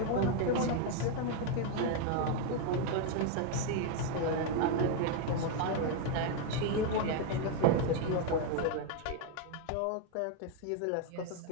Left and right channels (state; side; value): different; both; correlation 0.01